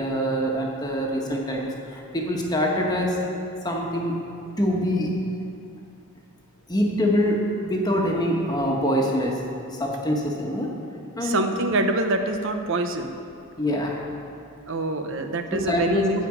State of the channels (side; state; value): both; normal; correlation 0.39